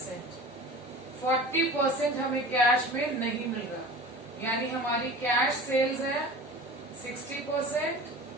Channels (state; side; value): normal; both; correlation 0.38